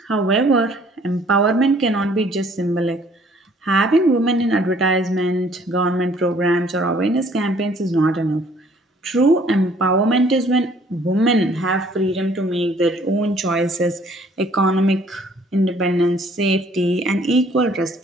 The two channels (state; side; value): normal; both; correlation 0.59